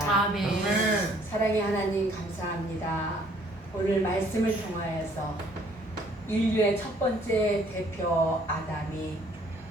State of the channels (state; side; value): normal; both; correlation 0.61